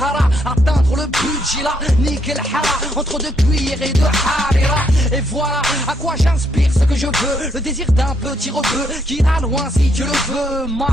atteindre le budget là, nickel hara, entre deux cuillères et de harira. Et voilà à quoi j'inspire ce que je veux, le désir d'un petit rebeu qui ira loin si Dieu le veut.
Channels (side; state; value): both; normal; correlation 0.74